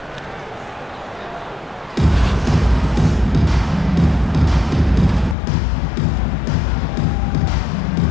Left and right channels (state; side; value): drops out; right; at 5.4 s